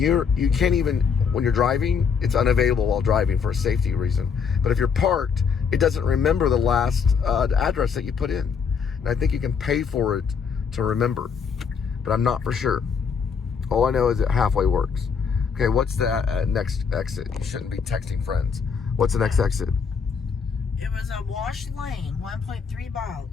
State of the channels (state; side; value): quieter; right; 6.2 dB